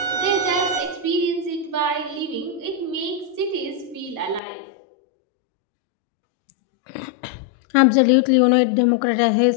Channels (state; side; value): drops out; right; at 4.4 s